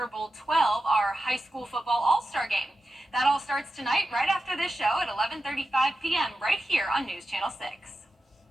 Bowl 12, our high school football all-star game. That all starts tonight right after this show at 11:35 p.m. right here on News Channel 6.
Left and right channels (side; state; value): both; normal; correlation 0.92